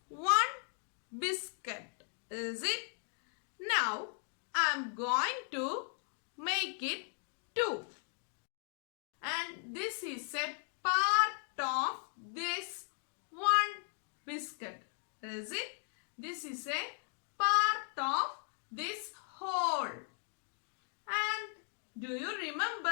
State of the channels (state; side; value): silent; right; 53 dB below the other